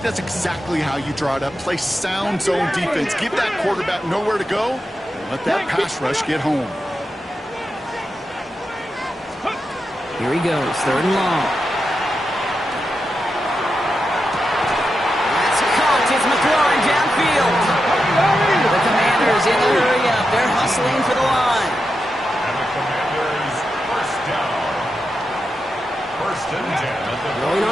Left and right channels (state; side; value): normal; both; correlation 0.88